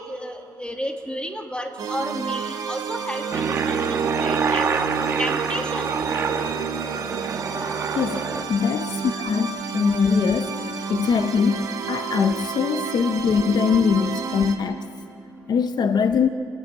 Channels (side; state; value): both; normal; correlation 0.65